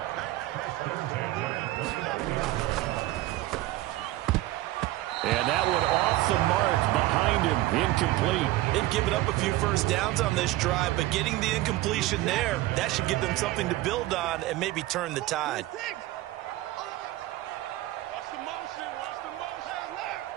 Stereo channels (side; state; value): left; quieter; 17.0 dB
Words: And that one off the mark behind him, incomplete. They've given up a few first downs on this drive, but getting the incompletion there, that should give them something to build on and maybe turn the tide.